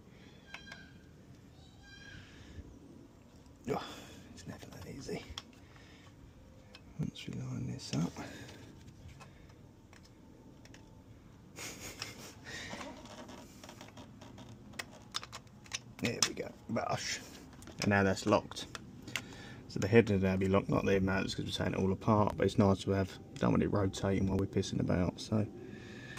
Oh, it's never that easy. Once we line this up. There we go, bosh. And now that's locked. So the head will now be locked, not the mounts because we're taking it all apart, but it's nice to have, don't want it rotating while we're pissing about. So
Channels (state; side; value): identical; both; correlation 1.00